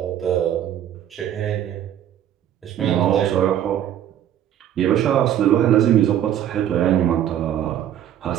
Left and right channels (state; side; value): quieter; left; 10.8 dB